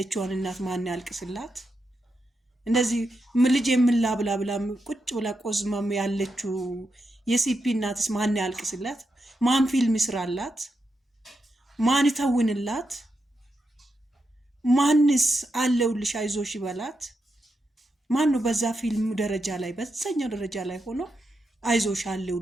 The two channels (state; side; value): normal; both; correlation 0.85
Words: እናት ማን ያልቅስላት? እንደዚህ ልጅ የምላብላ ብላ ቁጭ ብላ ቆዝማም ያለችው የሲፒ እናትስ ማን ያልቅስላት? ማን ፊልም ይስራላት? ማን ይተውንላት? ማንስ አለውልሽ አይዞሽ ይበላት? ማን ነው በዛ ፊልም ደረጃ ላይ በዛኛው ደረጃ ላይ ሆኖ አይዞሽ